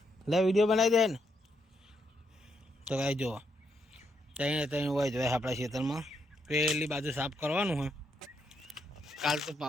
લે વિડીયો બનાવી દે ને. તો કાંઈ જો ત્યાં હોય જોઈએ આપણા ખેતરમાં પેલી બાજુ સાફ કરવાનું હોય. કાલ તો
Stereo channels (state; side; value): normal; both; correlation 0.78